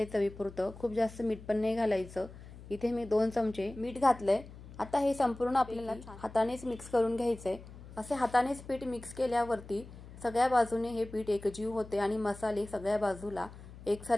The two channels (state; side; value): noise; left; hum, 16 dB below the sound